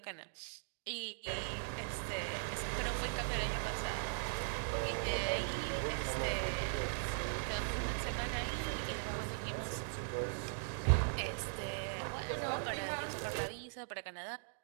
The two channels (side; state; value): left; silent; digital silence